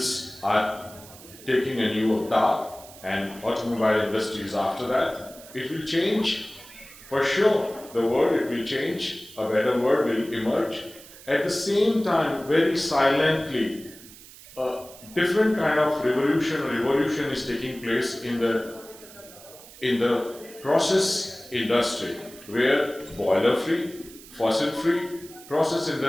are taking a new avatar and automobile industry is after that. It will change, for sure, the world, it will change, a better world will emerge. At the same time, very silently, a different kind of revolution is taking place in the process industry, where boiler free, fossil free, process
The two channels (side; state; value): right; noise; hiss, 19 dB below the sound